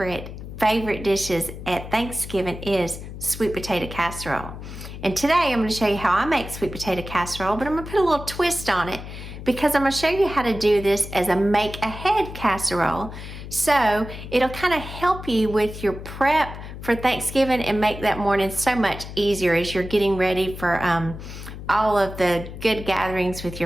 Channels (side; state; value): left; noise; hum, 11 dB below the sound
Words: dishes at Thanksgiving is sweet potato casserole. And today I'm going to show you how I make sweet potato casserole, but I'm going to put a little twist on it because I'm going to show you how to do this as a make-ahead casserole. So it'll kind of help you with your prep for Thanksgiving and make that morning so much easier as you're getting ready for all of the good gatherings with